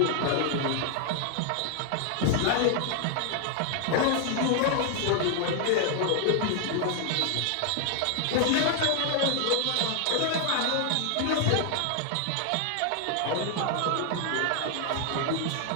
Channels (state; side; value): different; both; correlation 0.00